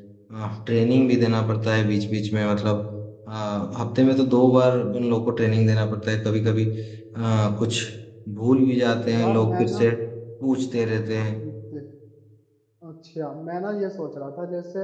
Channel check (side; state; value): both; identical; correlation 1.00